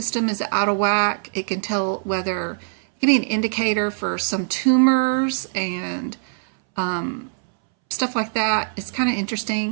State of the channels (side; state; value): left; silent; 63 dB below the other